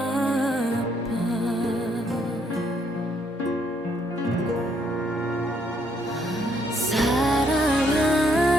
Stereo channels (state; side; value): normal; both; correlation 0.71